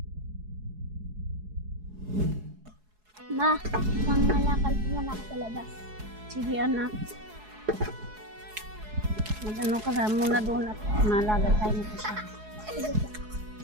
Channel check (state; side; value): late; left; 4.7 ms